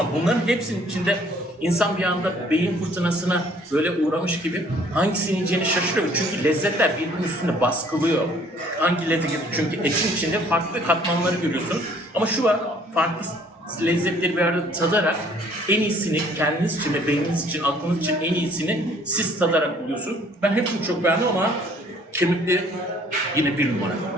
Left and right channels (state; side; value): normal; both; correlation 0.58